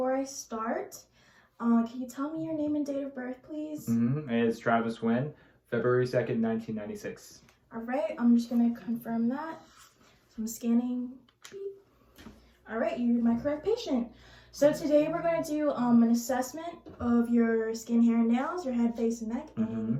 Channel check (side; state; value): both; identical; correlation 1.00